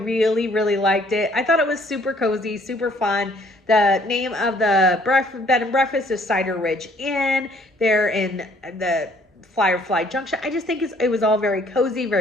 really liked it. I thought it was super cozy, super fun. The name of the bed and breakfast is Cider Ridge Inn. They're in the Firefly Junction. I just think it was all very cozy,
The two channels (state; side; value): normal; both; correlation 0.61